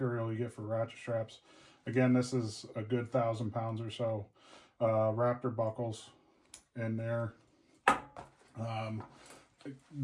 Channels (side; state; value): both; identical; correlation 1.00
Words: you get for ratchet straps. Again, this is a good 1,000 pounds or so. Raptor buckles in there.